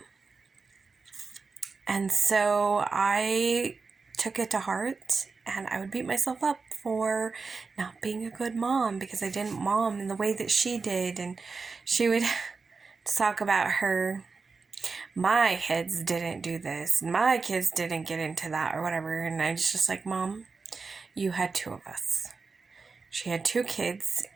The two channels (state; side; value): quieter; left; 4.5 dB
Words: And so I took it to heart, and I would beat myself up for not being a good mom because I didn't mom in the way that she did. And she would talk about my kids didn't do this, my kids didn't get into that, or whatever. And I was just like, Mom, you had 2 of us. She had 2 kids,